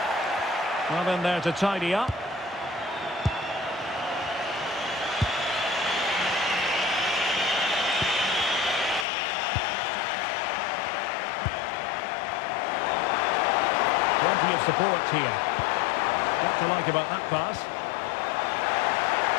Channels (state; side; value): drops out; right; at 9.1 s